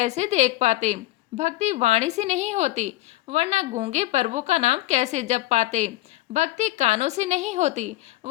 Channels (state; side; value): quieter; right; 17.4 dB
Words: देख पाते। भक्ति वाणी से नहीं होती, वरना गूंगे प्रभु का नाम कैसे जप पाते। भक्ति कानों से नहीं होती,